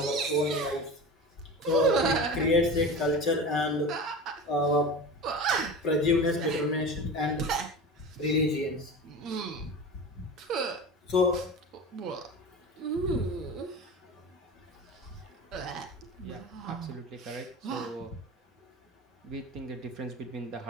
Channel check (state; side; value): normal; both; correlation 0.31